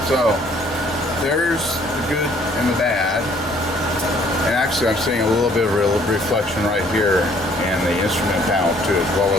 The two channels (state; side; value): normal; both; correlation 0.61